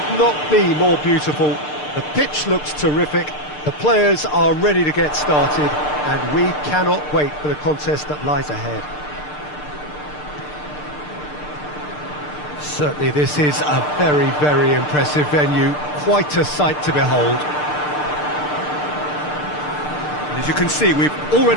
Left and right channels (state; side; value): late; right; 6.7 ms